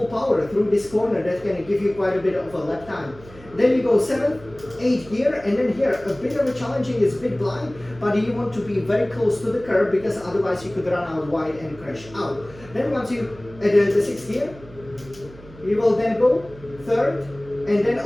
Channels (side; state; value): right; noise; hum, 20 dB below the sound